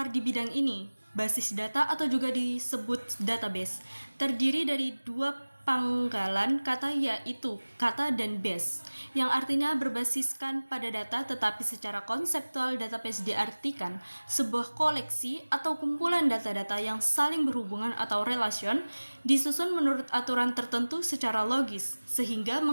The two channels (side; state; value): both; inverted; correlation -1.00